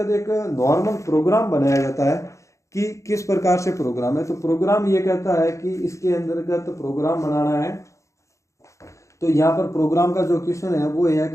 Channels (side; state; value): right; late; 0.15 ms